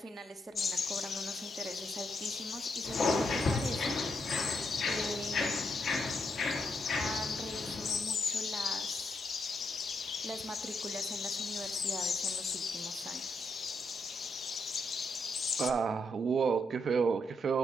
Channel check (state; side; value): normal; both; correlation 0.79